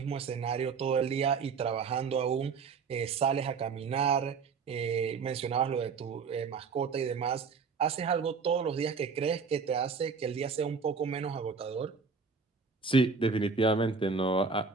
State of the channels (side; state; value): left; quieter; 5.3 dB